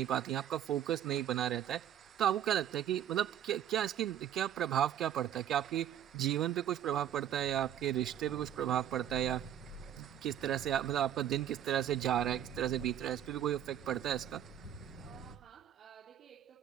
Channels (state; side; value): quieter; left; 10.6 dB